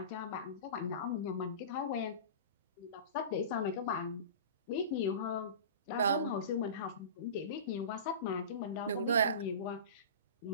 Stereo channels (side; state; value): both; inverted; correlation -0.33